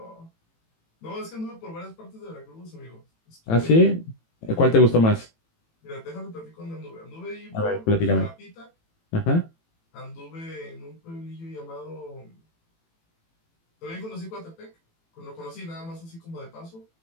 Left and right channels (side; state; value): right; late; 18 ms